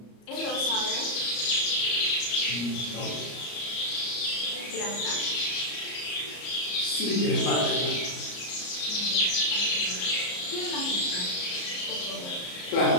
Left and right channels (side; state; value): right; late; 34 ms